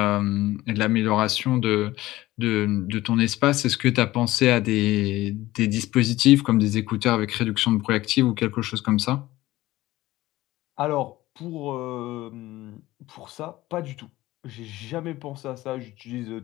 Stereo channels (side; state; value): right; quieter; 17.1 dB